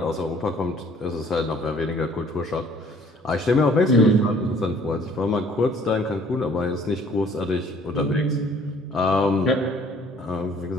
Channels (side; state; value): both; normal; correlation 0.56